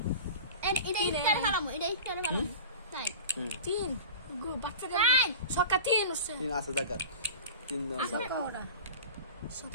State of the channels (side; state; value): both; inverted; correlation -0.34